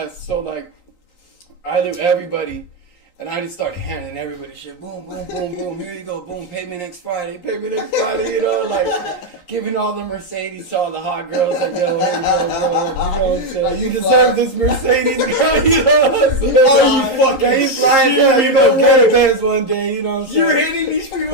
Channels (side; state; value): right; late; 11 ms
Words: So, like, I knew everybody. And I just started handing everybody shit. Boom, boom, boom, boom. Here you go. Boom. Pay me next Friday. Pay me next Friday. You know, like giving all the Mercedes to all the hot girls. Like, yo, here you go, girl. You know what I'm saying? You deserve this Mercedes, girl. You know what I'm saying? Oh, you fucking he's flying down. You know, get a Benz one day. You know what I'm saying? You're hitting these people